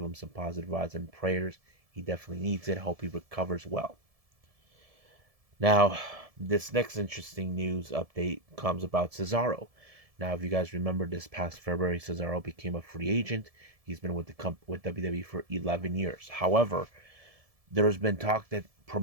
him some positive vibes and prayers. He definitely needs it. Hope he recovers well. Now, this next interesting news update comes about Cesaro. Now, if you guys remember, this past February, Cesaro became a free agent. He's been with with WWE for 11 years. However, there has been talk that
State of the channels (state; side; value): late; left; 1.7 ms